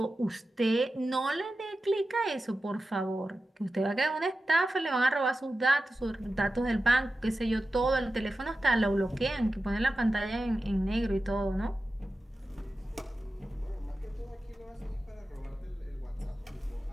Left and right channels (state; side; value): normal; both; correlation 0.93